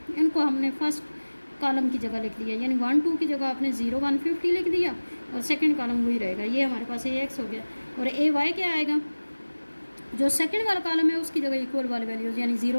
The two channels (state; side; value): inverted; both; correlation -1.00